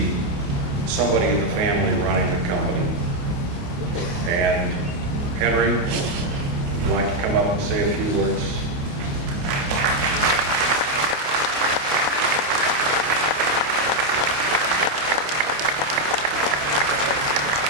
somebody in the family running the company. And Henry, would you like to come up and say a few words?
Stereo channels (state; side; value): late; left; 28 ms